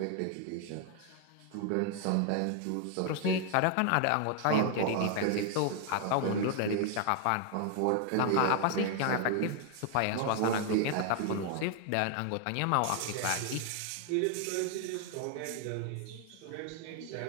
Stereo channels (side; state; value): both; different; correlation 0.00